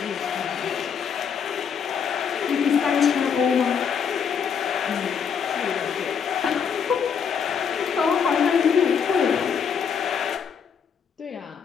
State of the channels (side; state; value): right; quieter; 7.0 dB